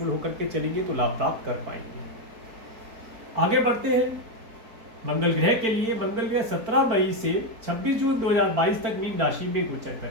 होकर के चलेंगे तो लाभ प्राप्त कर पाएंगे। आगे बढ़ते हैं मंगल ग्रह के लिए। मंगल ग्रह 17 मई से 26 जून 2022 तक मीन राशि में गोचर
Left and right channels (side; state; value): left; late; 4.4 ms